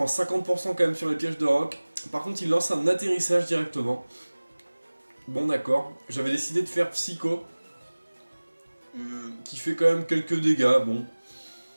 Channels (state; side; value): inverted; both; correlation -1.00